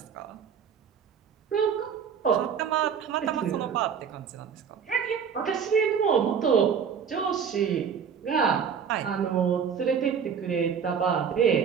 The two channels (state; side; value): quieter; left; 7.1 dB